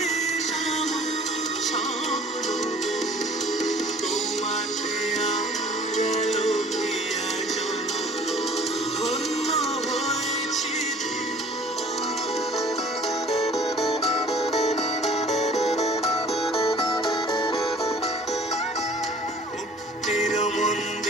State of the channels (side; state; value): both; normal; correlation 0.50